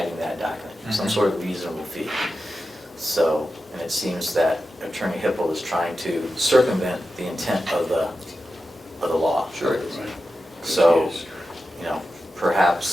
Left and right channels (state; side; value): normal; both; correlation 0.91